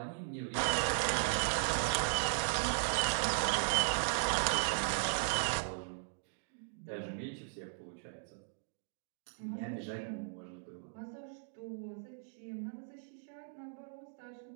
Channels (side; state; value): left; silent; digital silence